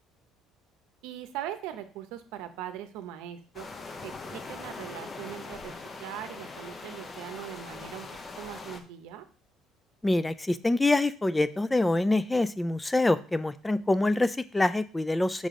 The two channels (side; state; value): both; normal; correlation 0.93